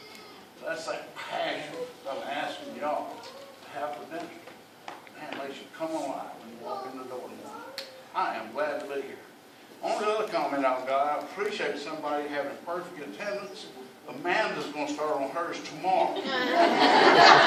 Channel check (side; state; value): both; identical; correlation 1.00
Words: That's that passion I'm asking y'all to have for dinner. Man, makes you come alive when you walk in the door tomorrow. I am glad to be here. Only other comment I've got, I appreciate somebody having perfect attendance. Amanda's going to start on hers tomorrow.